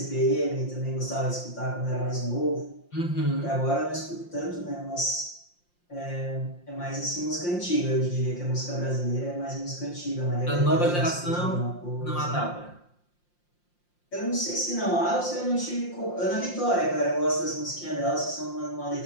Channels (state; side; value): late; right; 5.7 ms